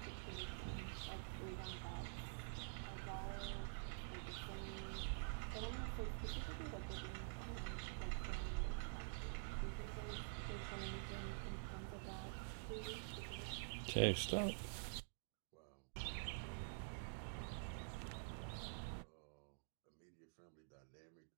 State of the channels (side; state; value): left; silent; digital silence